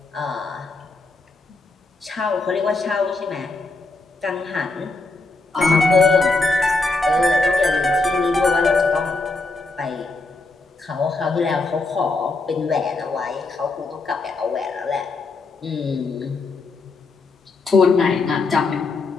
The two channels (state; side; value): quieter; right; 3.5 dB